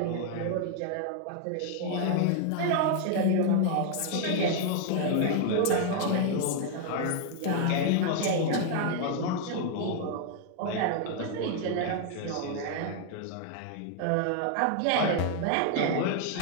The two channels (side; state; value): both; different; correlation 0.00